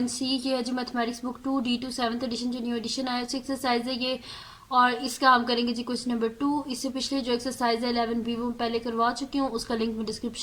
ये है जो mathematics book 2D2 7th edition जो न्यू एडिशन आया है एक्सरसाइज है ये। और इसका हम करेंगे जी क्वेश्चन नंबर 2। इससे पिछले जो एक्सरसाइज है 11B वो पहले करवा चुकी हूँ, उसका लिंक मैं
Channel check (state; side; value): identical; both; correlation 1.00